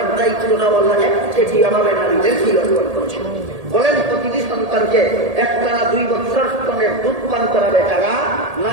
দায়িত্বটা আল্লাহ একচেটিয়াভাবে নারীদেরকে অর্পণ করেছেন। বলেন, প্রতিটি সন্তানকে একটানা 2 বছর স্তনের দুধ পান করাবে কারা?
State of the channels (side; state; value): left; late; 1.8 ms